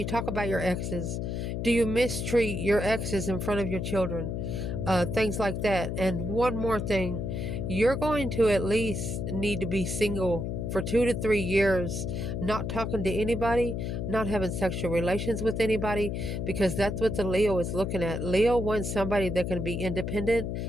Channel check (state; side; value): noise; left; hum, 3 dB below the sound